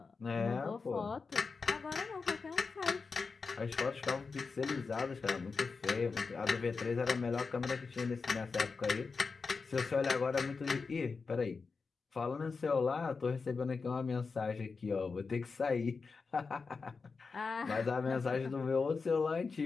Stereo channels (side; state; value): right; quieter; 4.7 dB